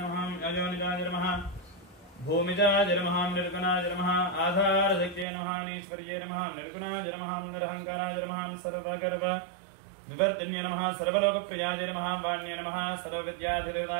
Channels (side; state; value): left; drops out; at 5.2 s